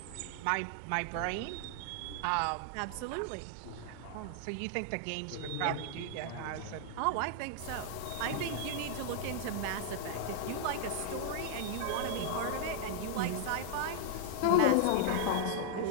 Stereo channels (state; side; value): different; both; correlation -0.01